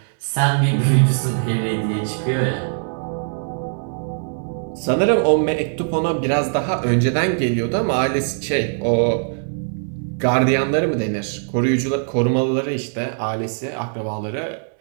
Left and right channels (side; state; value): left; silent; 65 dB below the other